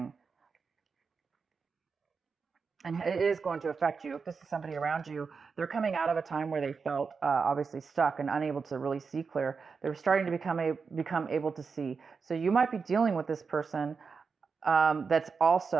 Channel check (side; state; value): left; quieter; 5.2 dB